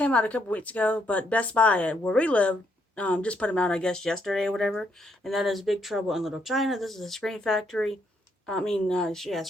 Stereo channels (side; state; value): both; normal; correlation 0.75